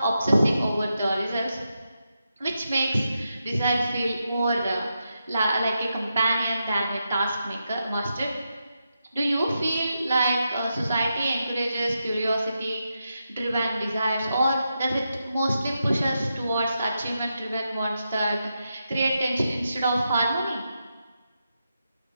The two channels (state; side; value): inverted; both; correlation -0.86